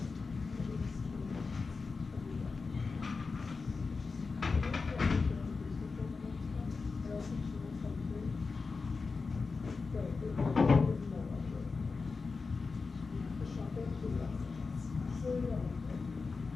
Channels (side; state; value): right; quieter; 4.4 dB